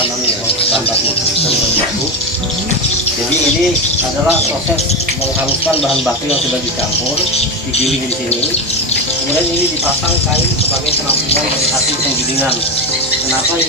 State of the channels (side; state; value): both; normal; correlation 0.16